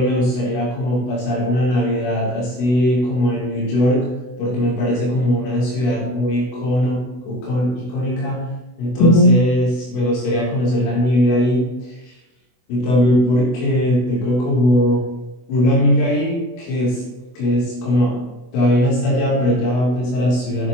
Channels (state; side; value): late; right; 24 ms